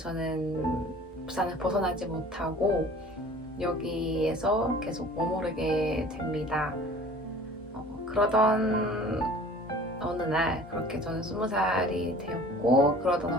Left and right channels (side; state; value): both; normal; correlation 0.46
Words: 부산을 벗어나지 못하고 여기에서 계속 머무르게 됩니다. 그러던 어느 날, 그렇게 저는 20살이 되었고 그러던